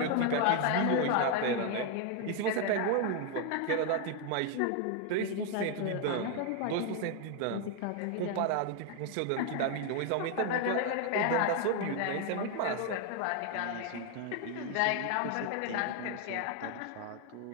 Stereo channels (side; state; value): both; different; correlation 0.01